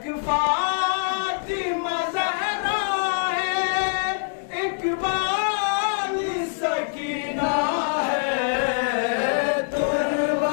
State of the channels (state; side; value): silent; right; digital silence